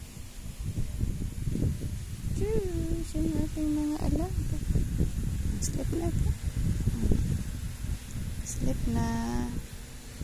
Diyos. Yung ating mga alaga. Sleep na ito. Sleep na.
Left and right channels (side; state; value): both; identical; correlation 1.00